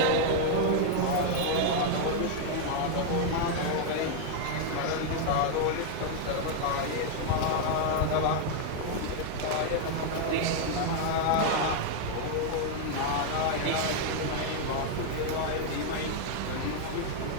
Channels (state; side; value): different; both; correlation 0.00